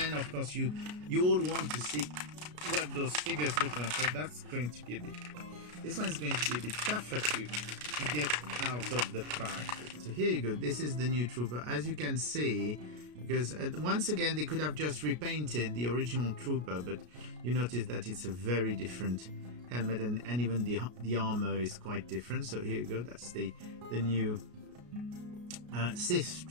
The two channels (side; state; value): left; late; 33 ms